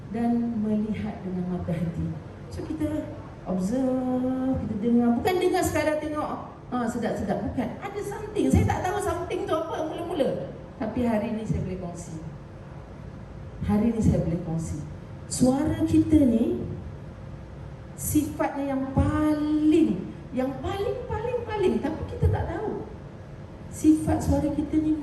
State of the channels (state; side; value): identical; both; correlation 1.00